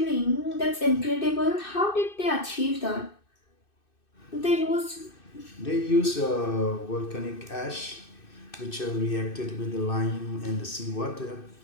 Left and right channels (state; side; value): late; right; 2.6 ms